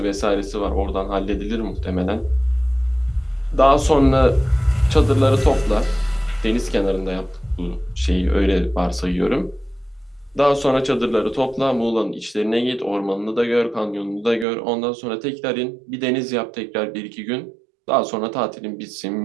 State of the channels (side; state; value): left; drops out; at 14.5 s